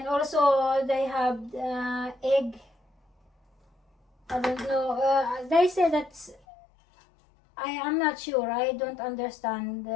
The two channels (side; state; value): right; drops out; at 6.4 s